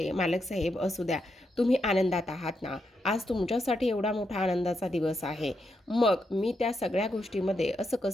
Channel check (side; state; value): both; normal; correlation 0.82